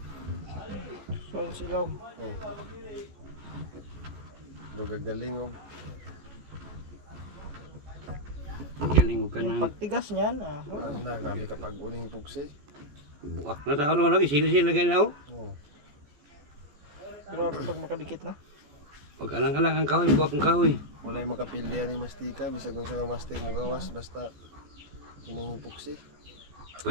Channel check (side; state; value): left; late; 14 ms